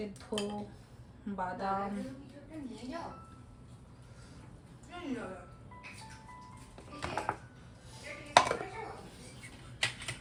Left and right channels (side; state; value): both; identical; correlation 1.00